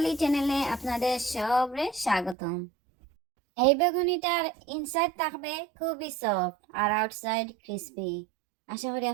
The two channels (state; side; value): drops out; left; at 2.4 s